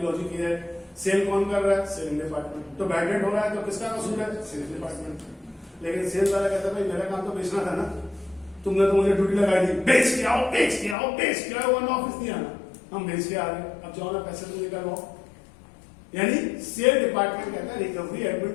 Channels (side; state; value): right; drops out; at 11.0 s